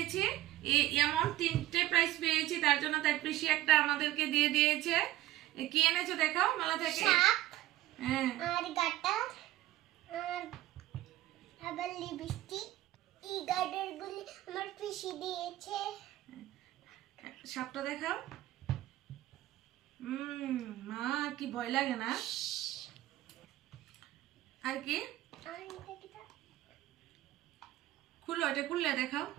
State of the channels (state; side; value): quieter; left; 15.3 dB